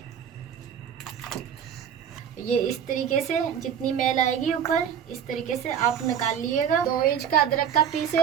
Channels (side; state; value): left; quieter; 8.5 dB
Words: ये इस तरीके से जितनी मैल आएगी ऊपर इस तरीके से आप निकाल लीजिएगा। 2 इंच का अदरक का पीस